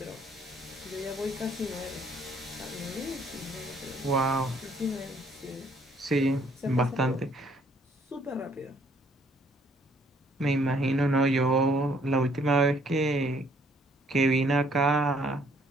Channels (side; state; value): both; normal; correlation 0.64